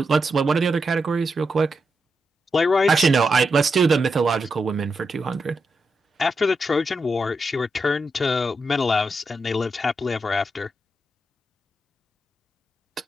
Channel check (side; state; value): both; normal; correlation 0.85